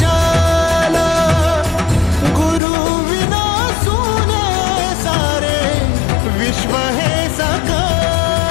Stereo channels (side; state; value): right; drops out; at 2.6 s